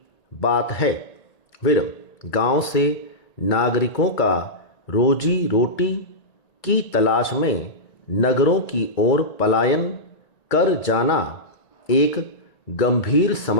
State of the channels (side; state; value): right; late; 1.9 ms